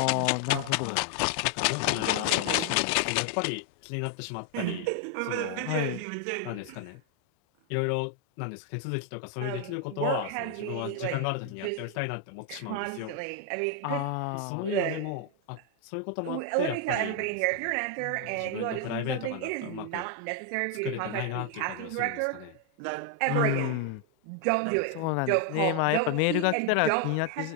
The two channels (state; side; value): different; both; correlation 0.00